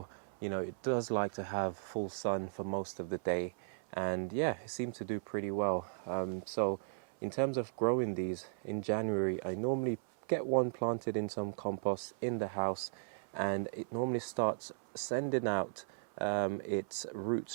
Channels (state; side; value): silent; left; 53 dB below the other